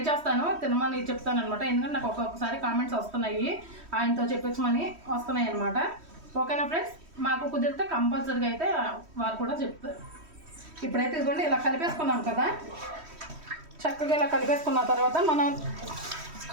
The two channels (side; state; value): left; late; 3.1 ms